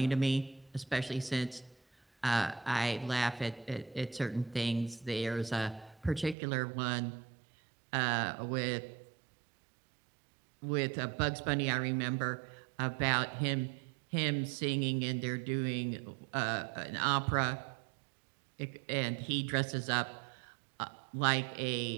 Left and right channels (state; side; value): drops out; left; at 6.4 s